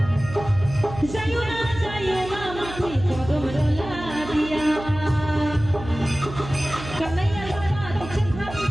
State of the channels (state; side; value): noise; right; hum, 12 dB below the sound